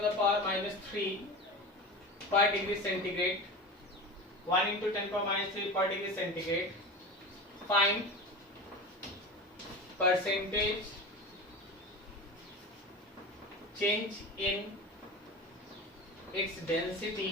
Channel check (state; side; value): normal; both; correlation 0.29